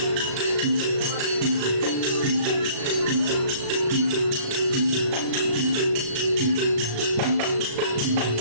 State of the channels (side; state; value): left; late; 36 ms